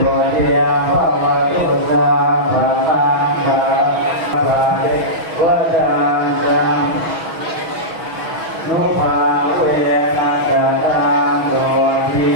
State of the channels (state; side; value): late; left; 6.2 ms